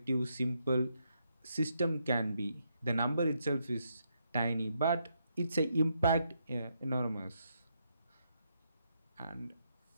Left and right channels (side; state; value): both; inverted; correlation -0.79